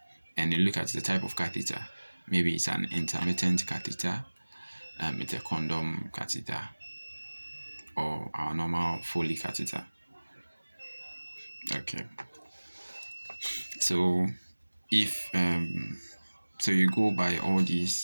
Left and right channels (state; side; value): inverted; both; correlation -1.00